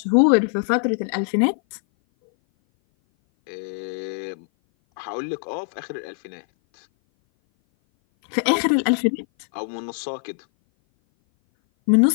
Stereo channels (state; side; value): silent; right; 58 dB below the other